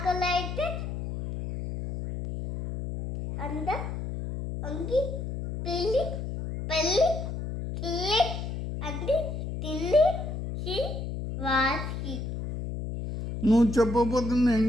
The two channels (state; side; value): noise; left; hum, 5 dB below the sound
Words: అయితే అంగి పెళ్ళి కిల్లి అది తిని వాసి. నువ్వు చెప్పకపోతే నేను